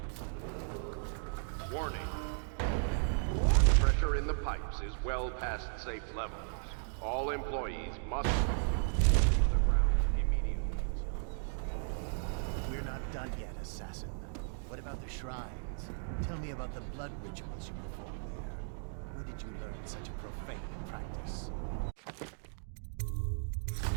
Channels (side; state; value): left; silent; digital silence